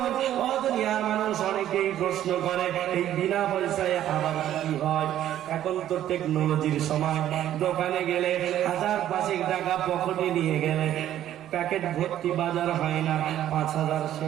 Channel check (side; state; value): left; quieter; 11.9 dB